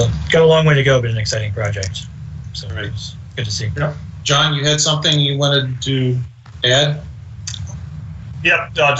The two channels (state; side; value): identical; both; correlation 1.00